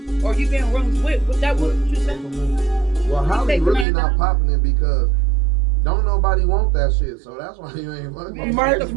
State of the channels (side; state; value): left; drops out; at 3.9 s